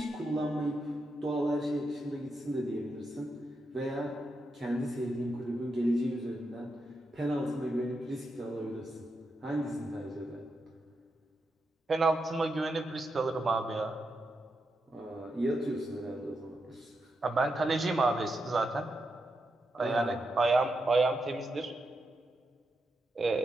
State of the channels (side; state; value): both; normal; correlation 0.85